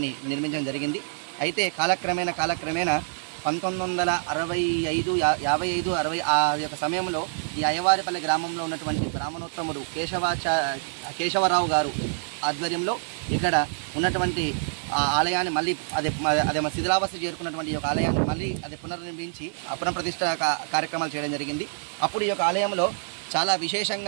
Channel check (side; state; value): left; silent; digital silence